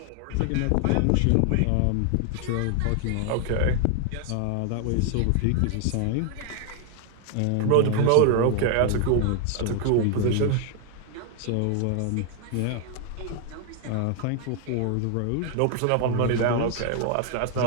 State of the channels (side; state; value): both; different; correlation 0.00